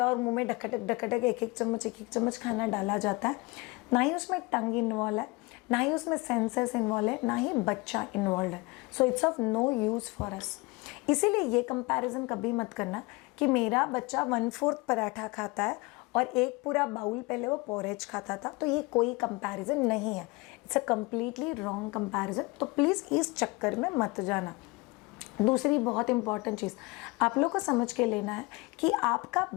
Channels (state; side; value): quieter; right; 24.7 dB